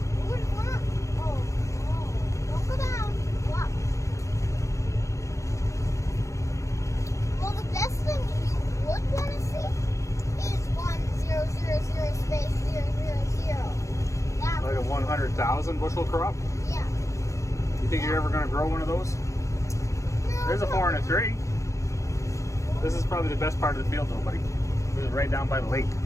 Don't go down. Go up. Well, the best thing you would want to see is 1000 space 000. That Like a would be 100,000 bushel crop. Yeah. You think you're ever going to grow one of those? No, There's a no, 4 and a no. 3. This is probably the best part of the field, though, buddy. This is right down by the lake.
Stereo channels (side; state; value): right; late; 0.15 ms